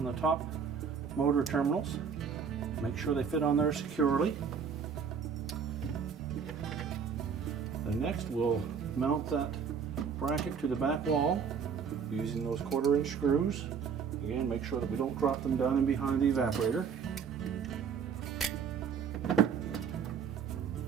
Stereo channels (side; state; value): left; quieter; 6.6 dB